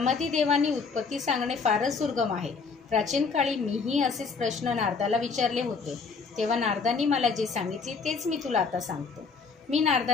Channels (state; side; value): quieter; right; 5.0 dB